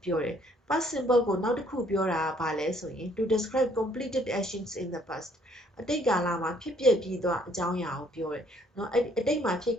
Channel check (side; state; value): both; normal; correlation 0.64